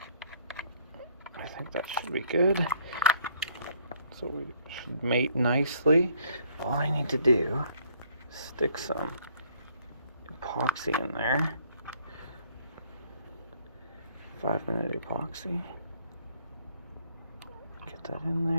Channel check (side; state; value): both; inverted; correlation -0.63